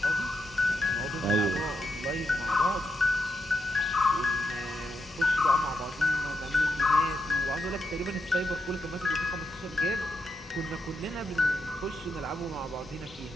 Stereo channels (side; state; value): both; normal; correlation 0.83